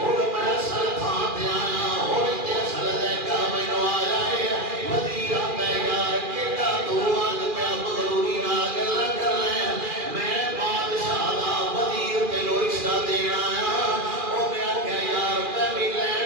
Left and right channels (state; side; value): late; left; 2.4 ms